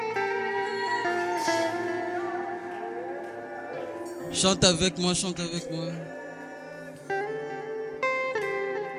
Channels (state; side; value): identical; both; correlation 1.00